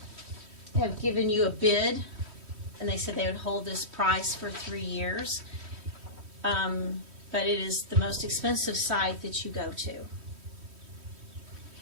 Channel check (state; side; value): late; left; 3.1 ms